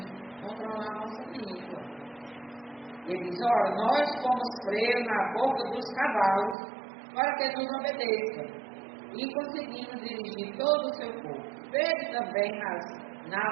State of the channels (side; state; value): left; drops out; at 6.6 s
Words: controlar a nossa língua. Ele diz: ora, nós fomos freios na boca dos cavalos para que nos obedeçam, e conseguimos dirigir todo o seu povo. Vede também as